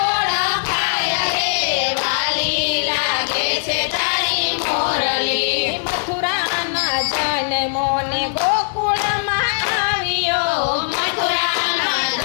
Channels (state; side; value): silent; right; digital silence